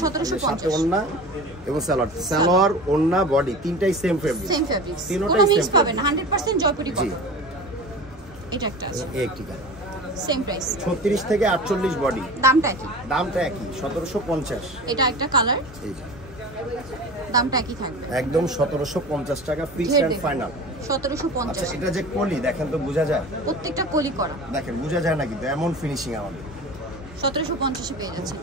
1750। ওন্না এবং সালোয়ার ওন্না বডি তিনটাই সেম ফেব্রিক, কোনো মিক্স পাবেন না। 100% জয়পুরি কটন। এটা একটা আছে, একটি কালার, সেম প্রাইস 36 থেকে 48 বডি। দামটা কি? দামটা একই, 1750। এটা একটা কালার, এই যে দামটা একই থাকবে, একদম 1750 টাকা ফিক্সড এন্ড ফাইনাল। 1750। আচ্ছা, এটা যে কলি দেখেন তো বোঝা যায়, প্রত্যেকটা কলি করা দেখেন বোঝা যায় না, কিন্তু এমন ফিনিশিং আমাদের 1750 এ পেয়ে যাচ্ছেন।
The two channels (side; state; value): both; normal; correlation 0.34